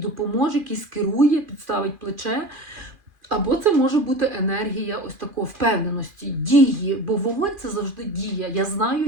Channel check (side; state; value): left; late; 2.4 ms